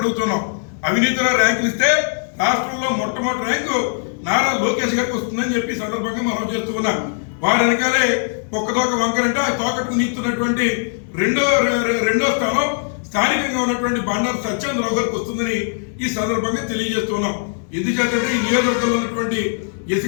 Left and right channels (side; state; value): right; silent; digital silence